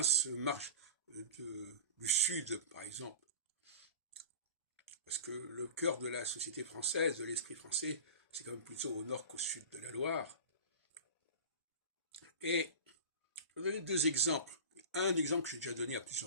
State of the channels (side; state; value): both; inverted; correlation -0.33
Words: du Sud, par exemple. Parce que le cœur de la société française, de l'esprit français, c'est quand même plutôt au nord qu'au sud de la Loire. Et je vais donner deux exemples. Un exemple que j'ai déjà donné à